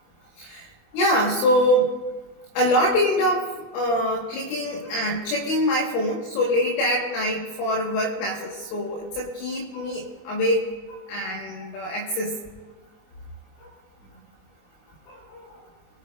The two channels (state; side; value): late; right; 24 ms